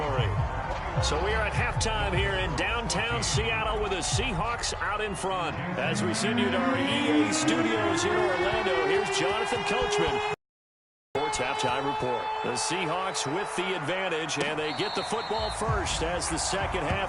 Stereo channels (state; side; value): identical; both; correlation 1.00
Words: So we are at halftime here in downtown Seattle with the Seahawks out in front. As we send you to our EA studios in Orlando, here's Jonathan Coachman. Sports Halftime Report. The Seahawks with the advantage, and they get the football first as the second